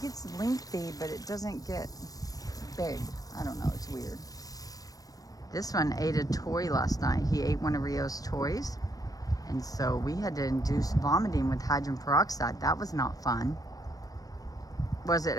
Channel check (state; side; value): late; right; 0.18 ms